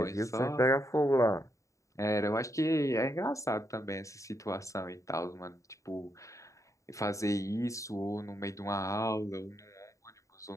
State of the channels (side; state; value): right; late; 0.15 ms